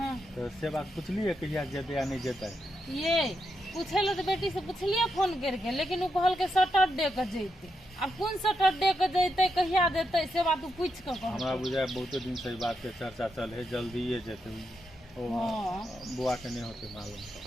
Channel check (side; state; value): both; normal; correlation 0.84